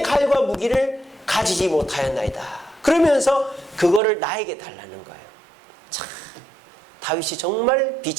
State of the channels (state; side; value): drops out; left; at 4.0 s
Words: 무기를 가지지 못하였나이다. 그러면서 그거를 나에게 달라는 거예요. 참, 다윗이 정말